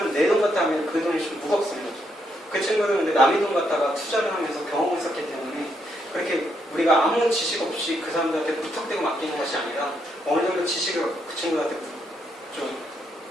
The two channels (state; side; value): normal; both; correlation 0.77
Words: 내 돈 갖다 하면 그 돈이 좀 무겁습니다. 그 친구들은 근데 남의 돈 갖다가 투자를 하면서 경험을 쌓기 때문에 그렇게 우리가 아무 지식 없이 그 사람들한테 무턱대고 맡기는 것이 아니라 어느 정도 지식을 그 친구들한테 좀